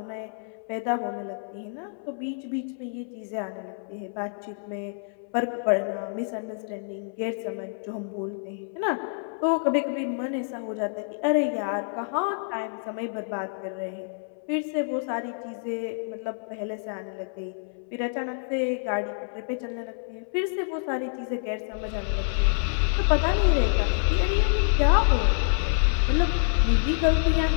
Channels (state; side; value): silent; right; 60 dB below the other